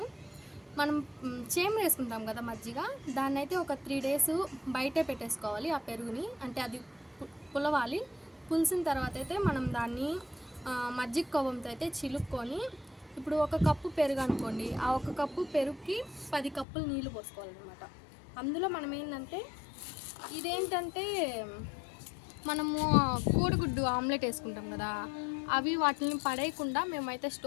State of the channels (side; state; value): right; drops out; at 16.7 s